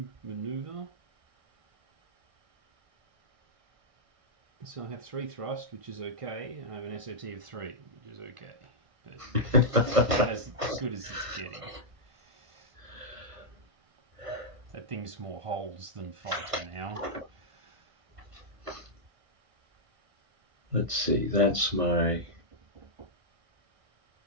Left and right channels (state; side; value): late; left; 1.4 ms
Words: maneuver. So I have 3 thrust, which is okay, and I have an SOT of 3, which is okay. But that's as good as it's getting. That thing's more holds than fighter now. Let's see, that's my...